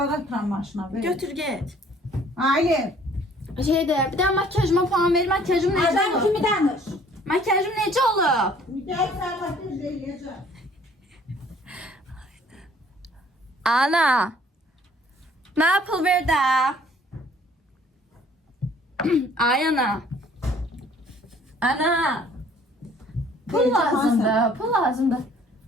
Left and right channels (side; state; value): both; normal; correlation 0.57